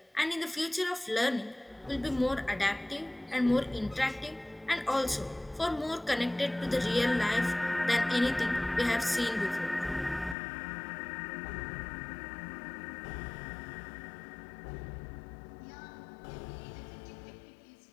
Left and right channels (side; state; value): right; drops out; at 10.4 s